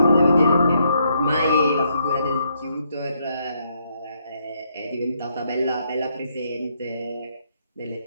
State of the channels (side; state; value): both; inverted; correlation -0.75